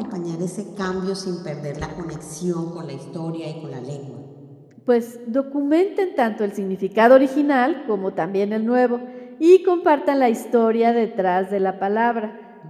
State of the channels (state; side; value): identical; both; correlation 1.00